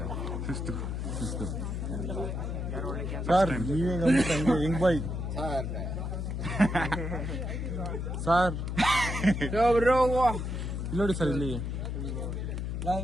ಸರ್ ನೀವೇ ಹೆಂಗ್ ಬಾಯ್ ಸರ್ ನೋಡಿ ಸರ್ ಇಲ್ಲಿ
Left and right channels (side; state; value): left; noise; hum, 3 dB below the sound